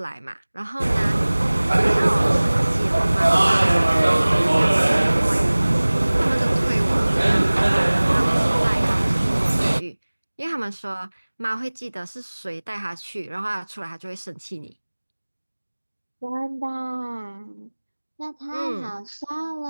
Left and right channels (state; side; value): inverted; both; correlation -1.00